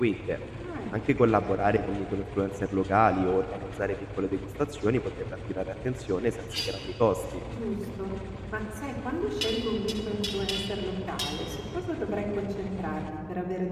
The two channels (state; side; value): identical; both; correlation 1.00